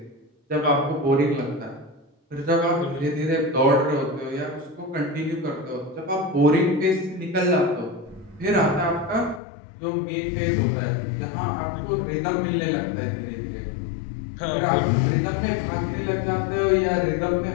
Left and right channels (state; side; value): drops out; right; at 9.4 s